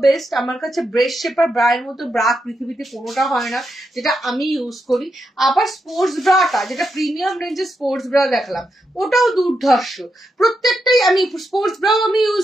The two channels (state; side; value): normal; both; correlation 0.84